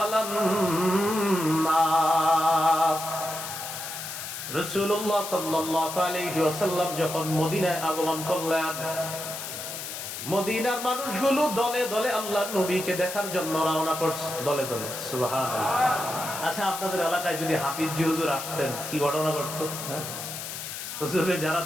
নাস, রাসূলুল্লাহ সাল্লাল্লাহু আলাইহি ওয়াসাল্লাম যখন মদিনায় আগমন করলেন, মদিনার মানুষগুলো দলে দলে আল্লাহর নবীকে দেখার জন্য রওনা করছে, দলে দলে। সুবহানাল্লাহ। আচ্ছা, আপনাদের এলাকায় যদি হাফিজি হুজুর আসতেন কি ঘটনা ঘটতো? হুজুরে যারা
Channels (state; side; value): noise; left; hiss, 7 dB below the sound